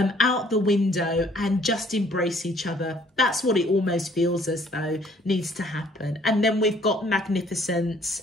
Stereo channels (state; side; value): normal; both; correlation 0.60